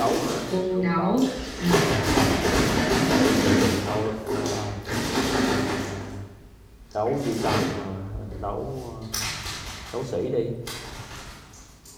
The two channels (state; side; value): identical; both; correlation 1.00